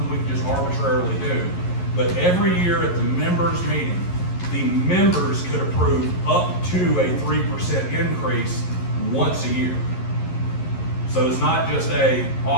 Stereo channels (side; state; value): right; late; 11 ms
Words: we can just arbitrarily do, but every year at the members meeting, the members could approve up to a 3% increase once a year. So it's not just a